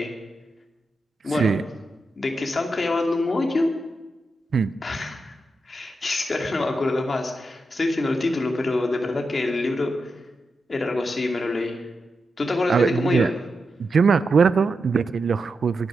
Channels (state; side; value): normal; both; correlation 0.88